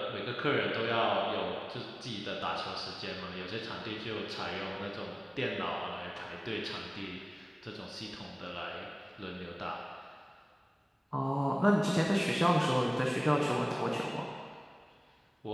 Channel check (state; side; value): identical; both; correlation 1.00